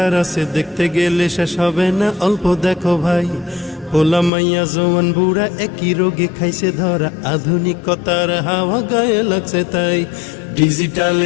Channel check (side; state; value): right; drops out; at 4.3 s